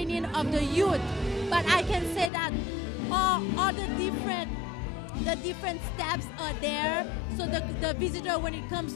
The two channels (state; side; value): drops out; right; at 2.3 s